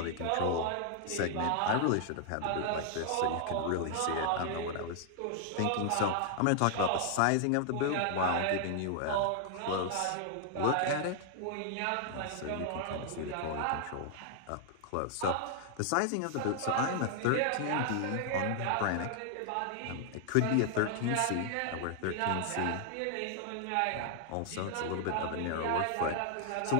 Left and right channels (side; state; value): both; different; correlation 0.00